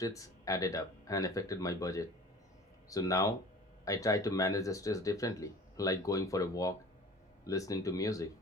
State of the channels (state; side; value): normal; both; correlation 0.43